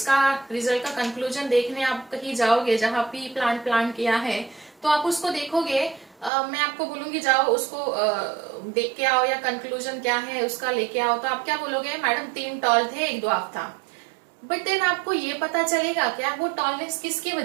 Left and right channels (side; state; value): left; drops out; at 6.3 s